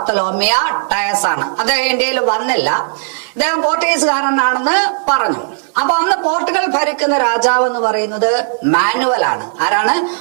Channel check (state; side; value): silent; left; digital silence